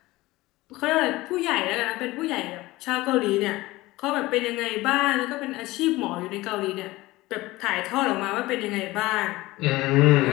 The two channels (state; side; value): quieter; right; 19.2 dB